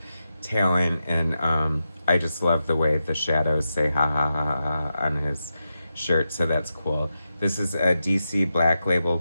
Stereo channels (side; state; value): both; inverted; correlation -0.88